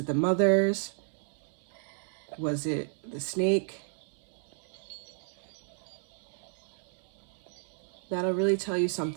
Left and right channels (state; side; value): silent; left; 56 dB below the other